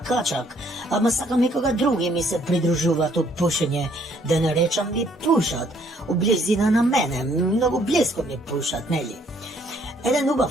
ама сакам и кога други ми се придружуваат у пушење, да не речам ми пушат, у близина на мене, многу близко ми пушат, нели? Еден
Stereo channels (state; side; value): normal; both; correlation 0.65